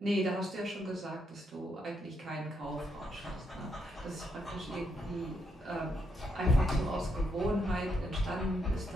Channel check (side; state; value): both; normal; correlation 0.78